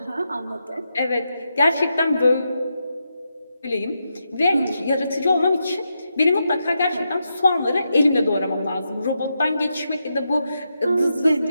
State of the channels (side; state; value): both; inverted; correlation -0.85